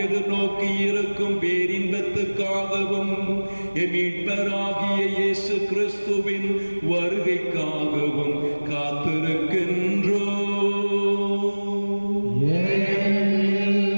எதிர்நோக்கி இருக்கும் பேரின்பத்துக்காகவும் மீட்பராகிய இயேசு கிறிஸ்துவின் வருகைக்காகவும் காத்திருக்கின்றோம்.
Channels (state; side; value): inverted; both; correlation -1.00